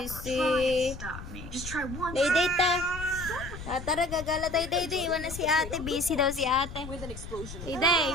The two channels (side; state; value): left; noise; rumble, 11 dB below the sound